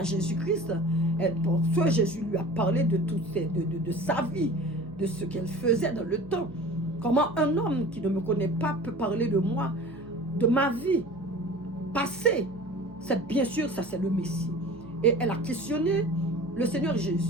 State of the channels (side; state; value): left; noise; hum, 20 dB below the sound